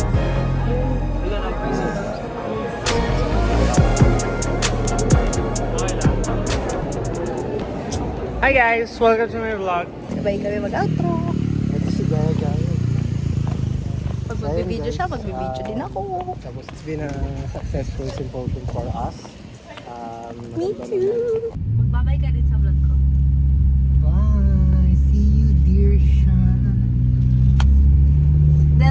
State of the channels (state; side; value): identical; both; correlation 1.00